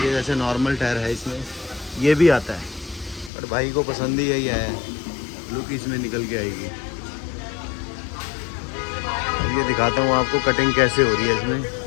जैसे नॉर्मल टायर है इसमें ये भी आता है, पर भाई को पसंद ही यही है, लुक इसमें निकल के आएगी। अब ये दिखाता हूँ आपको कटिंग कैसे हो रही है इसमें।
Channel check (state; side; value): drops out; right; at 3.3 s